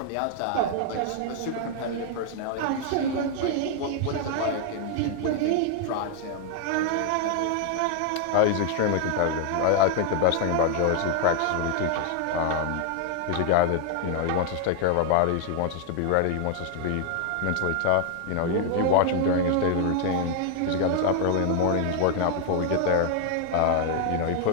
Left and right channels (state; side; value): different; both; correlation 0.00